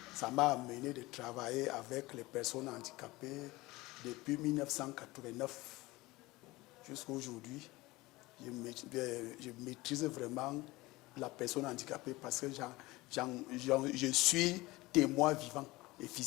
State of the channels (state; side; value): quieter; right; 20.5 dB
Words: ça m'a amené de travailler avec les personnes handicapées depuis 1989 jusqu'à aujourd'hui. Je maîtrise vraiment la personne handicapée parce que je suis témoin vivant et